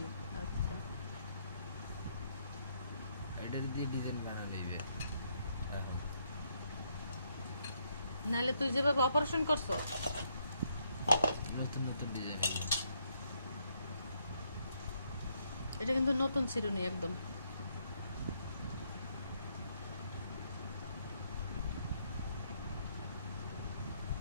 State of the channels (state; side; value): inverted; both; correlation -0.74